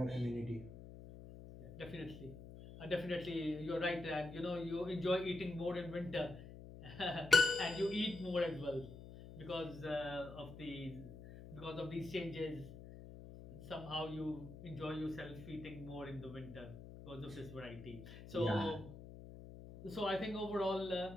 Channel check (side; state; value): left; noise; hum, 13 dB below the sound